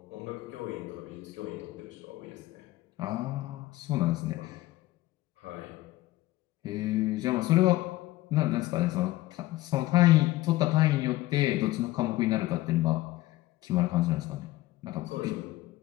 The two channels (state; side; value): quieter; right; 17.4 dB